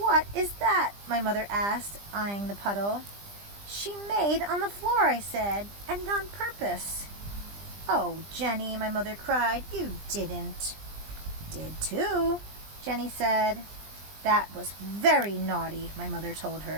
is that? My mother asked, eyeing the puddle. She made on the floor, I said, and on purpose. Oh, Jenny, my mother cried, you didn't. Did too, Jenny said. That was very naughty, my mother told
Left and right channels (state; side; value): late; left; 20 ms